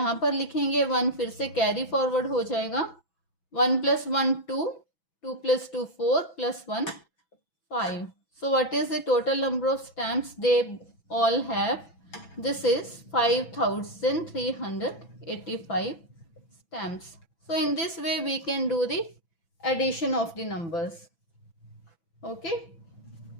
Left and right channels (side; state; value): right; late; 6.1 ms